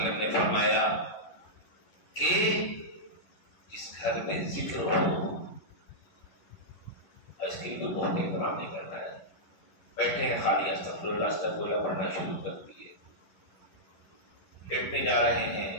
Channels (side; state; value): right; late; 11 ms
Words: نے فرمایا کہ جس گھر میں ذکر ہو، اس کے لیے تو بہت اہتمام نہیں کرنا ہے، بیٹھے ہیں خالی استغفر اللہ استغفر اللہ پڑھنا شروع کر دیے، لیٹنے جا رہے